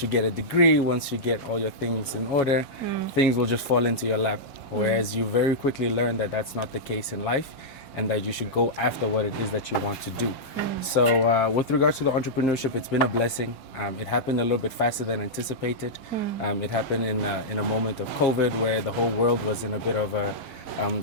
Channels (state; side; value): late; right; 5.7 ms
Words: you get a degree, once you get all your things in order, things will just fall into your lap. Whereas you very quickly learn that that's not the case in life, and that you should go after what it is that you want to do. So with regards to the entrepreneurship, it's been a blessing. It happened a little bit faster than anticipated. It happened in a moment of COVID where the whole world was in a bit of a